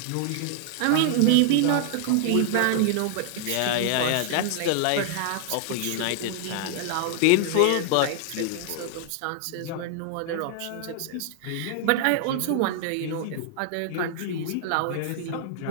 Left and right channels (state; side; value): different; both; correlation 0.00